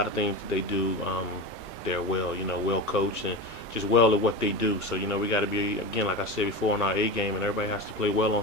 of things that they do, they're well coached and just well at what they do. So we got to be, again, like I said before, on our A game, and everybody has to play well on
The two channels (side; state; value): both; normal; correlation 0.24